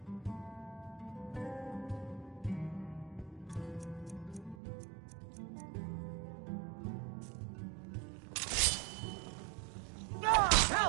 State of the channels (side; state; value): left; drops out; at 4.5 s